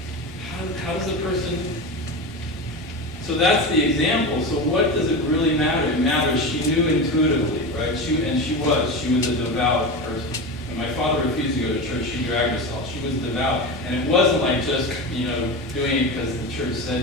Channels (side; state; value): left; noise; rumble, 25 dB below the sound